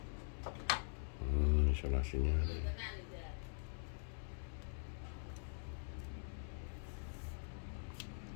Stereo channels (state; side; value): silent; right; digital silence